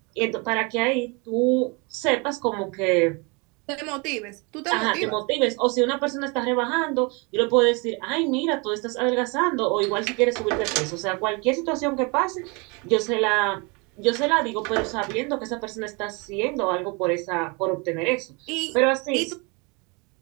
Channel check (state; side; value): quieter; left; 30.0 dB